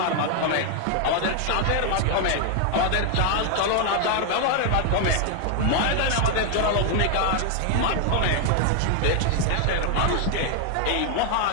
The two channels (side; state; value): both; different; correlation 0.00